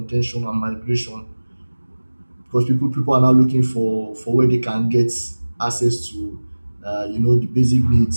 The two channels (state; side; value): inverted; both; correlation -1.00